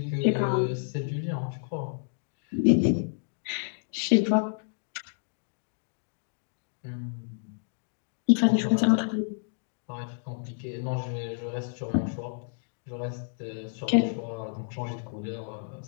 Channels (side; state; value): right; silent; digital silence